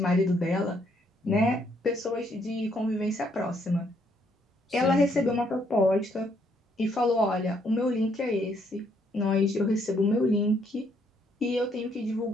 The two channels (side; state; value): both; normal; correlation 0.70